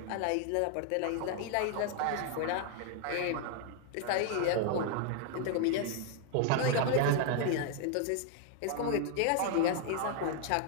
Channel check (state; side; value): different; both; correlation 0.00